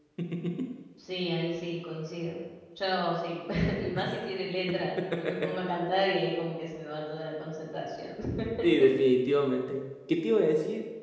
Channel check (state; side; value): identical; both; correlation 1.00